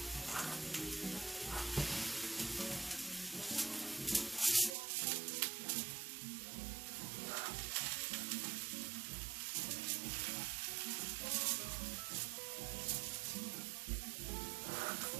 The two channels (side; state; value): left; drops out; at 4.8 s